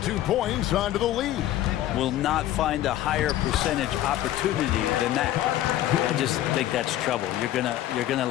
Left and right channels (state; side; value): quieter; right; 13.4 dB